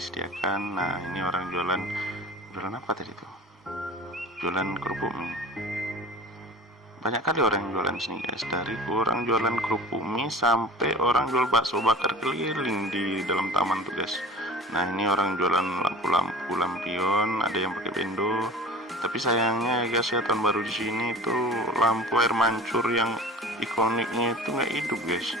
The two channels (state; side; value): normal; both; correlation 0.40